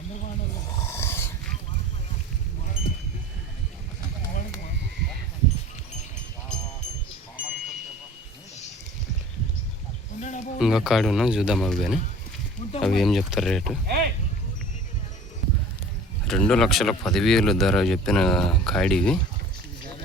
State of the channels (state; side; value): normal; both; correlation 0.43